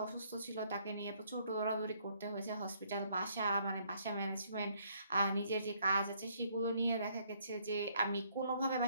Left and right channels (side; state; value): both; inverted; correlation -0.67